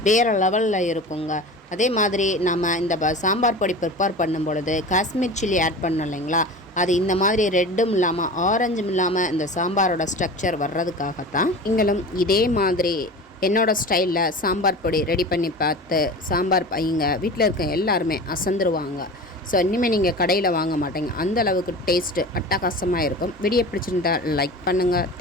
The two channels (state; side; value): normal; both; correlation 0.34